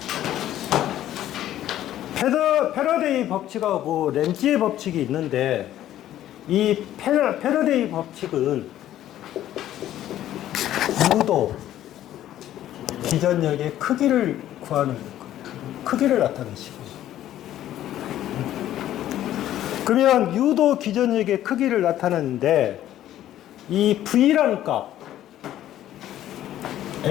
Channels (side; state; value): right; quieter; 12.6 dB